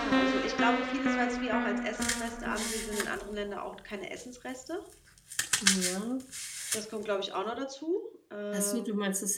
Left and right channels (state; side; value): identical; both; correlation 1.00